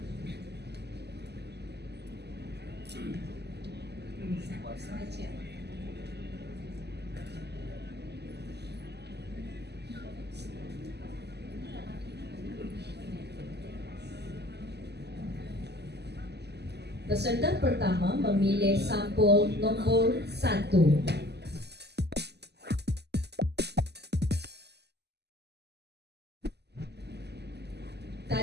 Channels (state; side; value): late; left; 0.49 ms